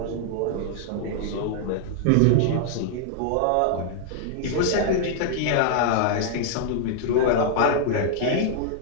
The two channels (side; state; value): both; different; correlation -0.01